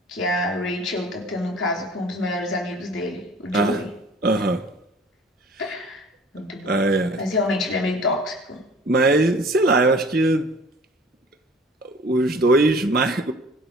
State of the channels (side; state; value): both; normal; correlation 0.48